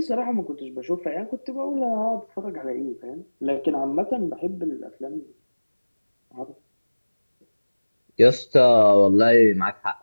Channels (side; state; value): both; inverted; correlation -1.00